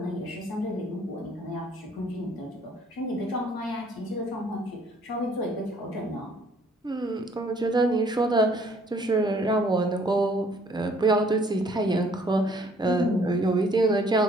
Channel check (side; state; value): both; normal; correlation 0.61